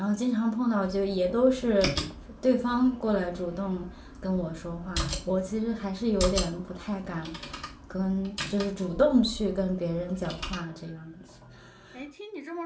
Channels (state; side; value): identical; both; correlation 1.00